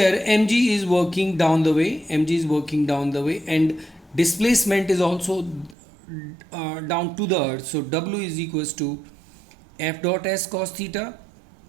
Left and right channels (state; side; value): drops out; left; at 5.8 s